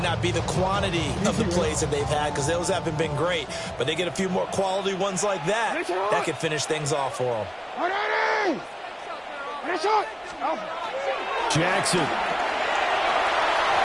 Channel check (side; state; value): both; identical; correlation 1.00